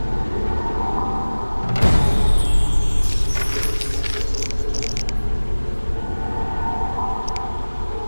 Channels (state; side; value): inverted; both; correlation -1.00